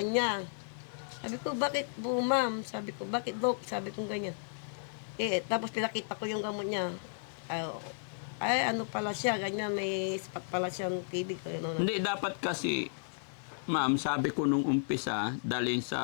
Sabi ko, bakit po ma'am? Sabi ko, bakit dok? Sabi ko ganyan. Tapos pinakita ko yung gamot niya. Ano pala siya, ganyan, may spot pala siyang tibig. Hindi, dapat kasi, ma'am, sabi ko nung umpisa, dalhin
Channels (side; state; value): right; silent; 55 dB below the other